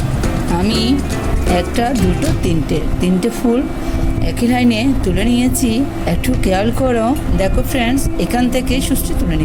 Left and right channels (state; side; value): identical; both; correlation 1.00